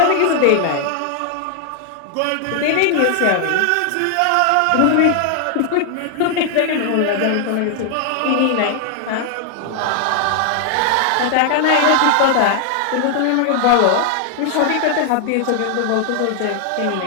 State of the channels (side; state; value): both; different; correlation 0.00